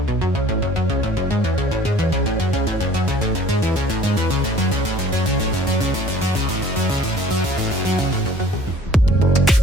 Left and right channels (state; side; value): normal; both; correlation 0.51